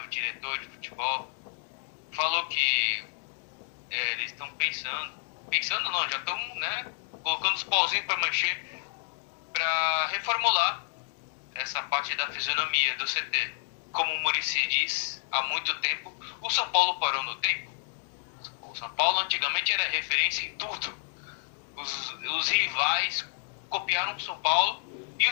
o diretor de futebol, falou que eles estão pensando não, já estão, né, colocando os pauzinhos para mexer, para reformular essa parte da fisionomia do CT. Como o Muricy diz, há muito tempo, o São Paulo parou no tempo. O São Paulo antigamente era referência em tudo. Os rivais copiaram o São Paulo e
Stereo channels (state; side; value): silent; right; 58 dB below the other